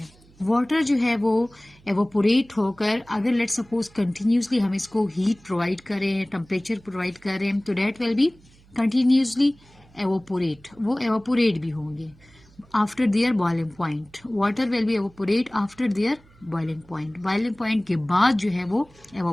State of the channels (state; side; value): noise; right; hum, 27 dB below the sound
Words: वाटर जो है वो एवोपोरेट होकर, अगर लेट सपोज कंटिन्यूसली हम इसको हीट प्रोवाइड करें, टेम्परेचर प्रोवाइड करें, तो that will be continuously evaporate, वो एवोपोरेट भी होंगे after their boiling point. Water will be evaporate after their boiling point, boiling point के बाद जो है वो